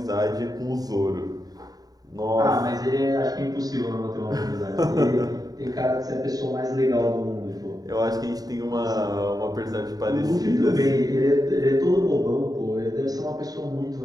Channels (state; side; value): late; left; 0.18 ms